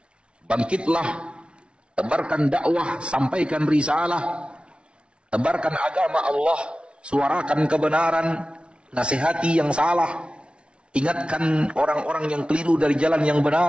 Bangkitlah, tebarkan dakwah, sampaikan risalah, tebarkan agama Allah, suarakan kebenaran, nasihati yang salah, ingatkan orang-orang yang keliru dari jalan yang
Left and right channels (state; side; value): late; left; 0.058 ms